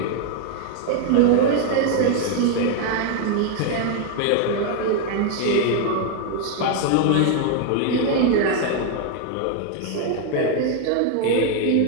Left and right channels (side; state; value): both; different; correlation 0.00